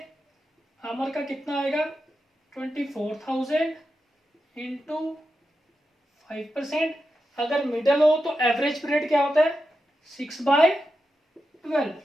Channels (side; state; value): both; normal; correlation 0.89